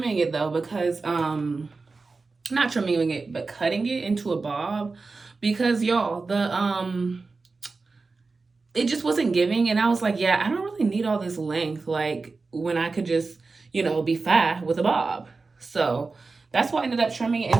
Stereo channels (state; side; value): quieter; left; 4.0 dB